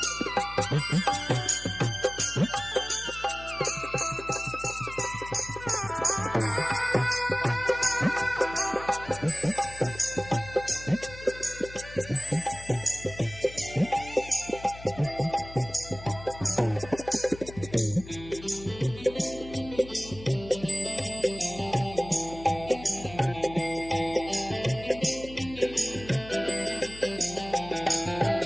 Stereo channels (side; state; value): left; noise; hum, 15 dB below the sound